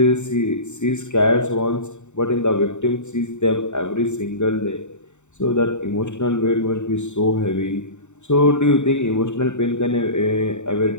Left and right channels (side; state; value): right; late; 0.84 ms